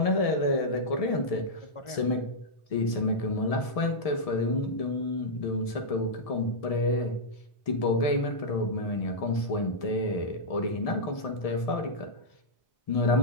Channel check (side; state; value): right; late; 1.7 ms